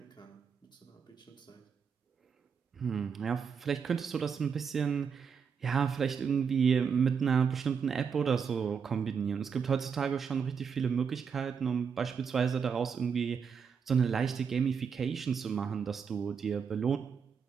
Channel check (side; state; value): left; quieter; 6.5 dB